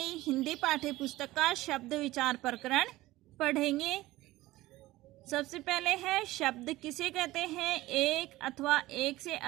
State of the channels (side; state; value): left; quieter; 17.7 dB